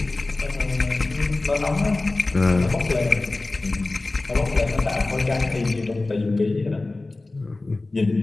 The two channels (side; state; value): right; quieter; 3.2 dB